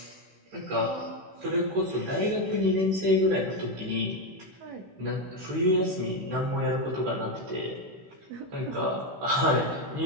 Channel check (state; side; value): late; left; 16 ms